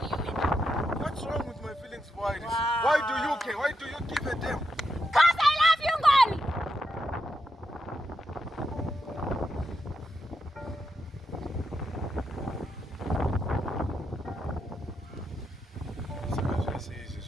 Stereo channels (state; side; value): normal; both; correlation 0.83